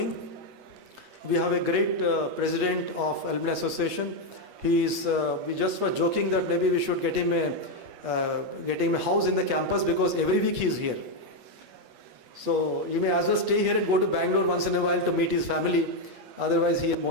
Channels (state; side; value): late; left; 8.4 ms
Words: We have a great president of Alumni Association. We just were joking that maybe we should get him a house in the campus, because every week he is here. So you may as well stay here and go to Bangalore once in a while to meet his family. Otherwise, he is